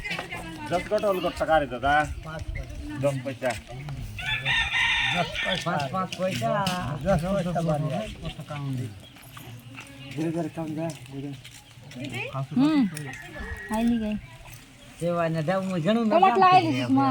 दस कट अलग टका रे दादा 10 पैसा 5 পয়সা 10 পয়সা বাড়ি धीरे धीरे कम जा आईली गई સેવા ને દાવ મુ ઘણું टमाटर लाएली सुषमा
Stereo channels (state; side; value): identical; both; correlation 1.00